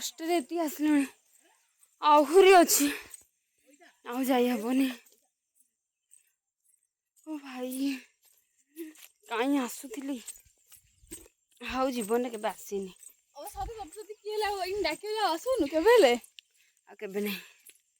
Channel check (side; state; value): both; identical; correlation 1.00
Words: रे एती आसले आहुरी अछि आउ जाई हबनी ओ भाई काई आसुथिली हाउ जीवन के आसीनी ओ सब सबसे केला होइन डाके आसुनु केबेले आ केबे नहीं